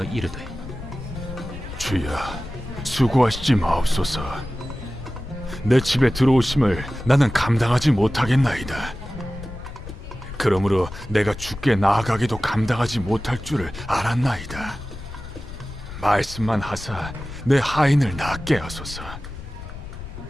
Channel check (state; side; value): noise; left; rumble, 12 dB below the sound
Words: 이르되, 주여, 수고하시지 마옵소서. 내 집에 들어오심을 나는 감당하지 못하겠나이다. 그러므로 내가 주께 나아가기도 감당하지 못할 줄을 알았나이다. 말씀만 하사 내 하인을 낫게 하소서.